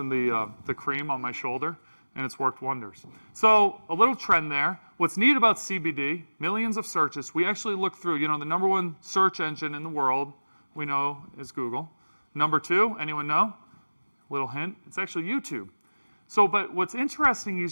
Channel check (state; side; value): inverted; both; correlation -1.00